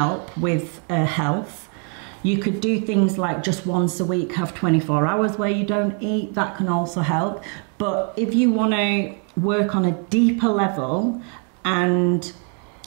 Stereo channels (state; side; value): quieter; left; 39.2 dB